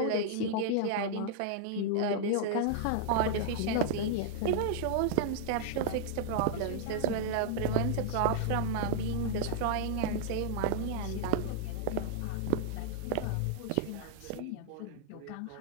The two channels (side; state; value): both; different; correlation -0.01